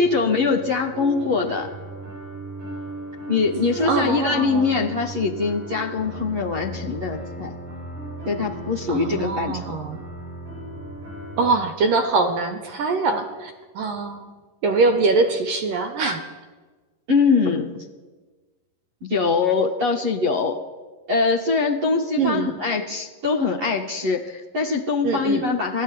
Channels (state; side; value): late; left; 11 ms